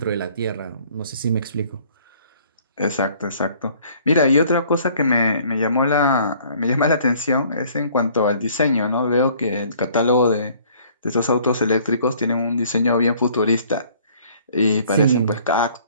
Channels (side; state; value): both; inverted; correlation -0.56